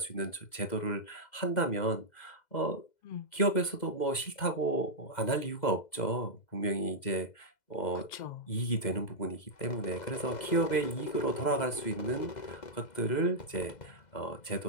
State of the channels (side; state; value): right; late; 2.0 ms